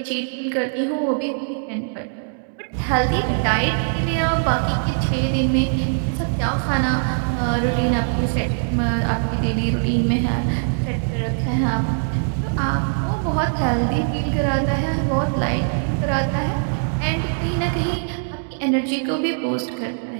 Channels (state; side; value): silent; left; digital silence